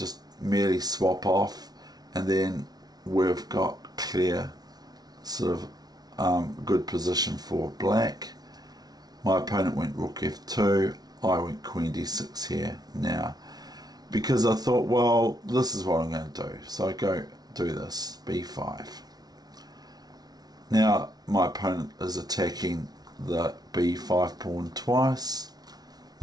merely swap off, and then we've got clear sort of good position for black? My opponent went rook F2, I went queen D6 here now, because I thought, well, this is what I'm going to do. So I go do this, B5. Now my opponent is attacking the B5 pawn twice,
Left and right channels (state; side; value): late; left; 0.19 ms